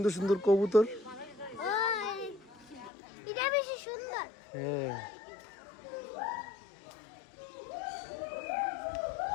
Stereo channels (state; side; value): drops out; right; at 2.9 s